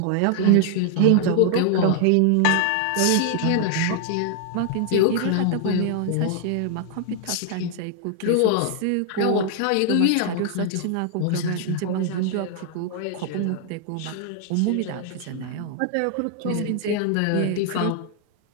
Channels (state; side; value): different; both; correlation 0.00